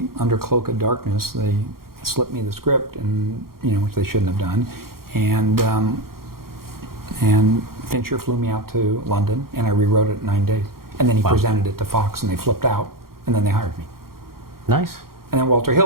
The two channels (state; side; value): late; left; 0.93 ms